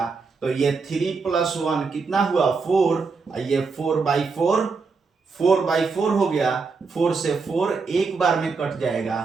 तो ये 3 + 1 कितना हुआ 4, और ये 4/4 हो गया, 4 से 4 एक बार में कट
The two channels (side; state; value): left; quieter; 4.6 dB